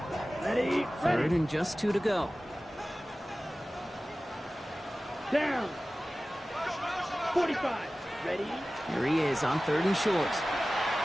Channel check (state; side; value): normal; both; correlation 0.96